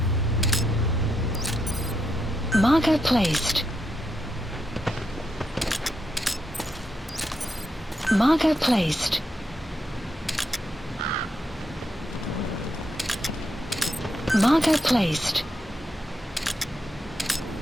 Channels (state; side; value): normal; both; correlation 0.82